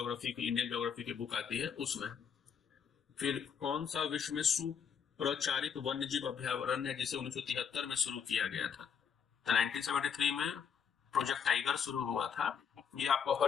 की, इंडियन ज्योग्राफी की बुक आती है उसमें। फिर कौन सा विश्व में सुप्रचारित वन्यजीव अभ्यारण्य है जिसे 1973 में शुरू किया गया था? तो 1973 में प्रोजेक्ट टाइगर शुरू हुआ था। ये आपको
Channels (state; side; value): quieter; right; 7.2 dB